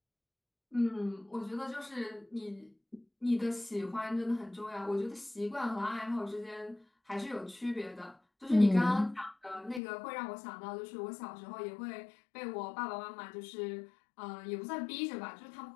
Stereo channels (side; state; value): right; drops out; at 9.8 s